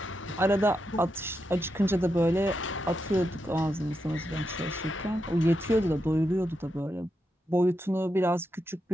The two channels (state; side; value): normal; both; correlation 0.85